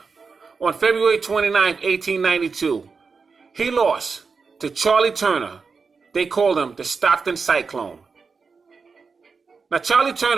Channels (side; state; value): left; quieter; 5.0 dB